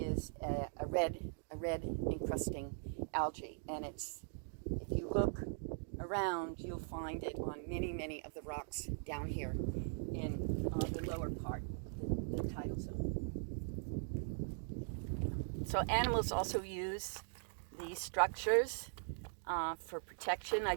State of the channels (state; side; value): silent; left; digital silence